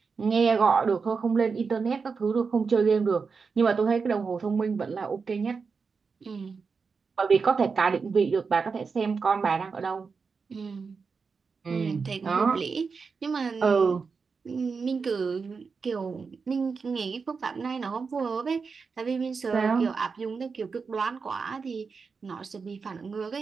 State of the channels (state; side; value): quieter; left; 5.1 dB